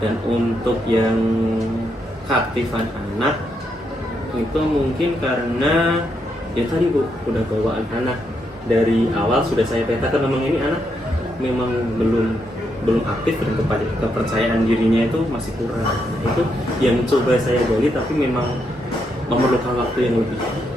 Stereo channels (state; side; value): normal; both; correlation 0.79